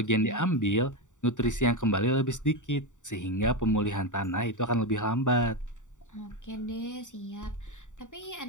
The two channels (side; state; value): right; late; 0.86 ms